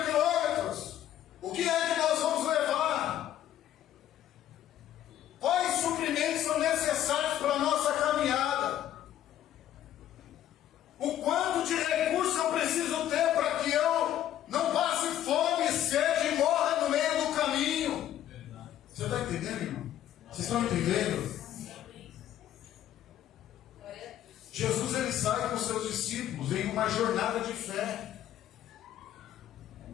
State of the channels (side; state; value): right; quieter; 11.8 dB